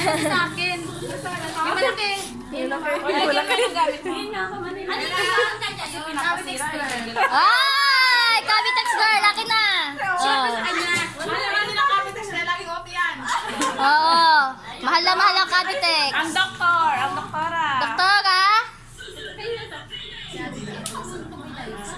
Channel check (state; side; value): identical; both; correlation 1.00